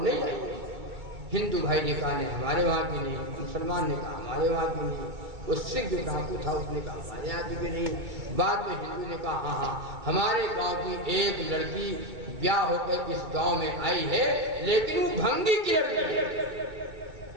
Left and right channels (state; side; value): late; left; 2.3 ms